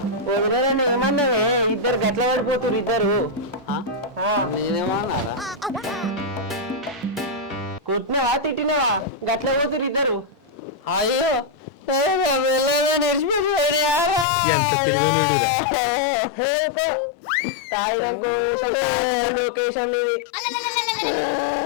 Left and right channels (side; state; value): right; drops out; at 14.2 s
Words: ఏమన్నావే ఇద్దరు గట్ల పడిపోతురు ఇద్దరు నేనేమన్నారా కొట్టినావా తిట్టినావా గట్ల పోతురు ఇద్దరు అయ్యో ఎంత తెలివైనడురా